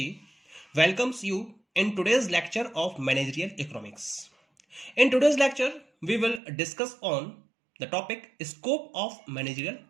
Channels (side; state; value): left; drops out; at 6.4 s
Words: welcomes you in today's lecture of Managerial Economics. In today's lecture, we will discuss on the topic Scope of Managerial